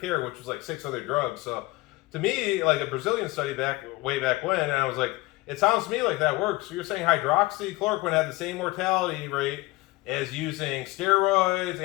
care, which was like 6 other drugs. So to me, like a Brazilian study way back when, and I was like, it sounds to me like that works. So you're saying hydroxychloroquine had the same mortality rate as using steroids,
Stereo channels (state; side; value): quieter; right; 20.7 dB